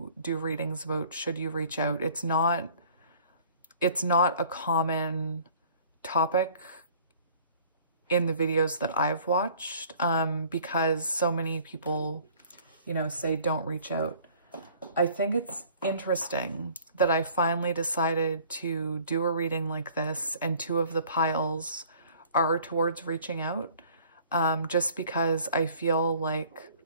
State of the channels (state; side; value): inverted; both; correlation -0.53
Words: do readings about should you reach out. It's not a common topic in the videos that I've watched, because so many people, you know, say don't reach out. I think it's interesting that I finally decided to do a reading like this, and two of the piles are towards reaching out, just because I feel like